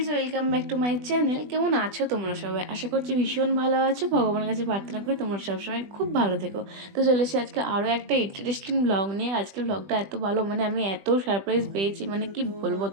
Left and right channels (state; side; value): late; left; 20 ms